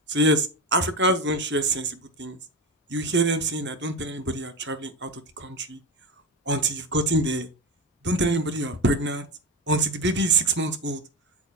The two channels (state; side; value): normal; both; correlation 0.19